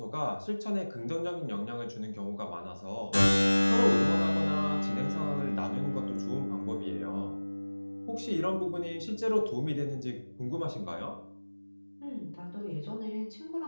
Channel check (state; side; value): inverted; both; correlation -1.00